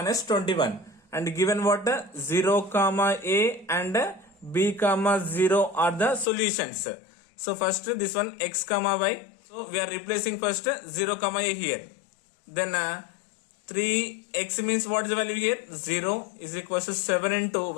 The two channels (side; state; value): right; drops out; at 6.2 s